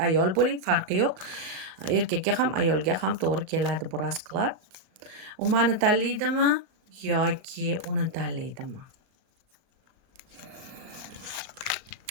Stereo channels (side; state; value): left; late; 38 ms